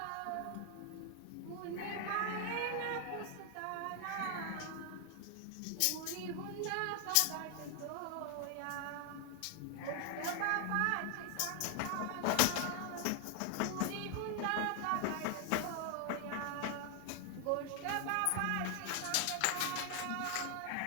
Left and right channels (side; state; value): both; different; correlation 0.00